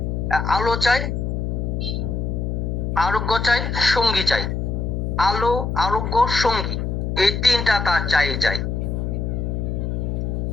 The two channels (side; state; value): left; noise; hum, 1 dB below the sound